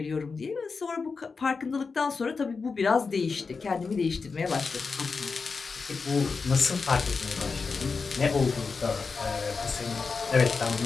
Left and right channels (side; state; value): right; quieter; 4.8 dB